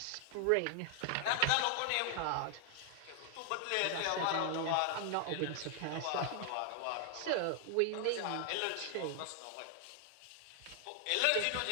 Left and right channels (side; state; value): both; different; correlation 0.00